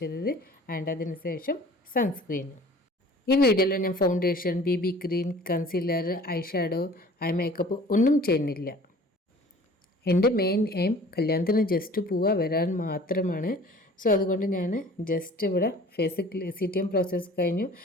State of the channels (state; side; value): normal; both; correlation 0.48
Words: ചെയ്തത് ആൻഡ് അതിനുശേഷം സൺസ്ക്രീൻ. ഈ വീഡിയോയിൽ ഞാൻ foundation, BB cream, concealer, eye shadow, eye makeup ഒന്നും ചെയ്യുന്നില്ല. എൻ്റെ മെയിൻ എയിം കല്യാണത്തിന് ജസ്റ്റ് പോവുക വരാൻ മാത്രമാണ്. സോ അതുകൊണ്ട് ഞാൻ ജസ്റ്റ് ഇവിടെ ഫേസ് CTM പ്രോസസ്സ് കഴിഞ്ഞു.